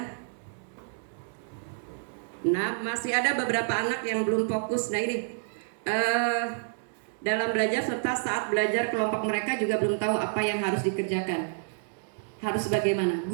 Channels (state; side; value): silent; left; 59 dB below the other